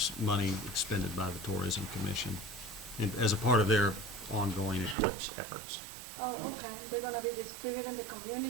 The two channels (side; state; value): left; drops out; at 5.0 s